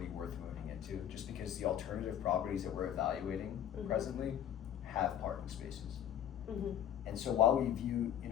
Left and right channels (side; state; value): right; quieter; 10.2 dB